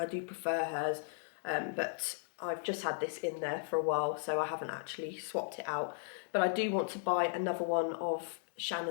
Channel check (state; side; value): silent; right; digital silence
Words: do prefer hers, but I've just had this in there for a while, so I haven't actually swapped it out. But I do want to buy another one of